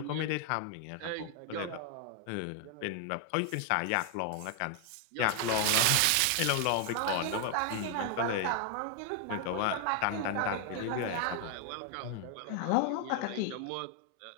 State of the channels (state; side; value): different; both; correlation 0.00